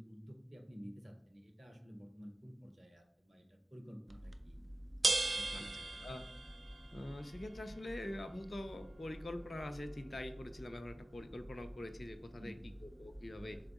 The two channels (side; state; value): both; normal; correlation 0.96